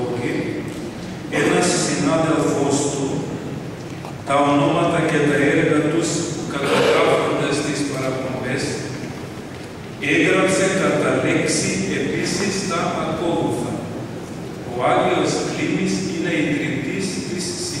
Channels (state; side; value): identical; both; correlation 1.00